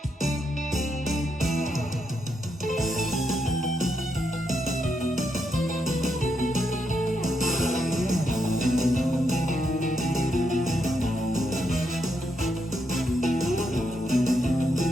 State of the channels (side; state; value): both; normal; correlation 0.80